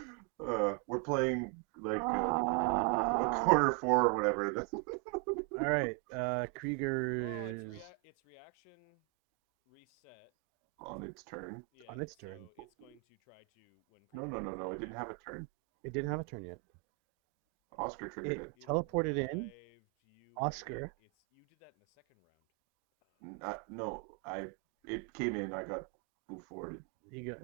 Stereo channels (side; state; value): left; quieter; 28.2 dB